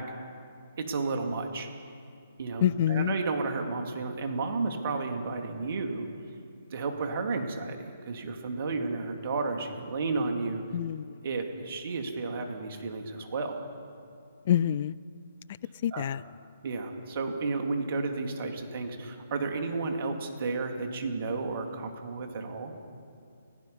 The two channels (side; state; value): both; inverted; correlation -0.66